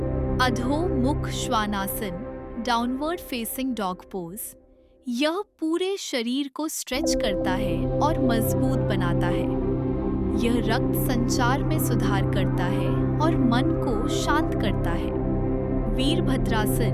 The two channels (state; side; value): identical; both; correlation 1.00